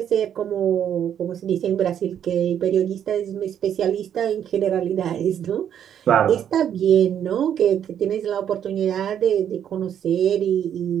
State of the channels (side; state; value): left; quieter; 9.4 dB